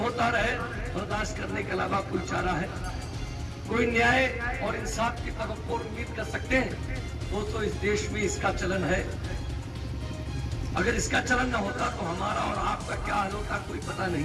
रहे, बर्दाश्त करने के अलावा कोई चारा है? कोई न्याय और इंसाफ की तवक्को उम्मीद कर सकते हैं? दोस्तों, इस देश में इसका चलन है। अगर इसका चलन न होता तो हमारा और आपका क्या हाल होता कोई पता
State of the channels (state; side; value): identical; both; correlation 1.00